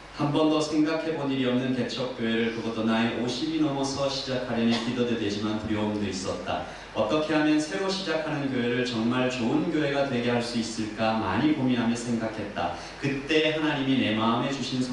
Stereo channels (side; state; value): both; identical; correlation 1.00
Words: 한 번도 생각해 본 일이 없는 개척교회를, 그것도 나이 50이 넘어서 시작하려니 기도도 되지만 두려움도 있었다. 어떻게 하면 새로 시작하는 교회를 정말 좋은 교회가 되게 할 수 있을까 많이 고민하며 생각했다. 그때 하나님이 내 마음에 주신